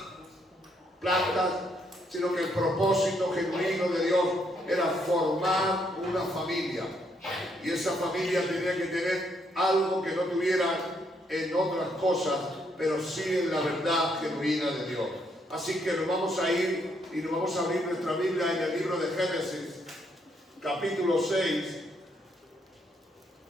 plantas, sino que el propósito genuino de Dios era formar una familia. Y esa familia tenía que tener algo que no tuviera en otras cosas, pero sí en la verdad genuina de Dios. Así que nos vamos a ir y nos vamos a abrir nuestra Biblia en el libro de Génesis, capítulo 6.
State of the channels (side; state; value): both; normal; correlation 0.73